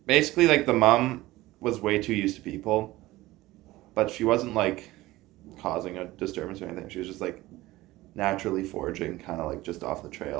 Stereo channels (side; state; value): left; quieter; 18.1 dB